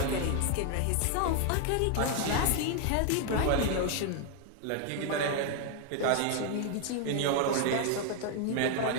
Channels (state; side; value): different; both; correlation 0.00